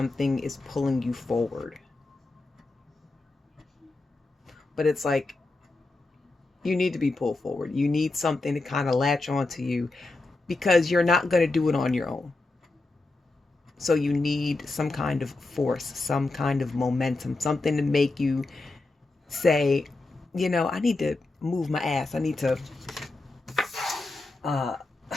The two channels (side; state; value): right; quieter; 3.2 dB